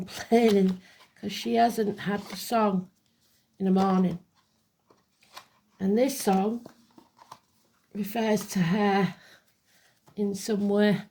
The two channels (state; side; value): identical; both; correlation 1.00